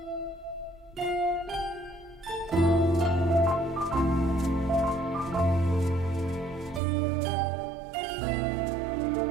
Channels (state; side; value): drops out; left; at 6.8 s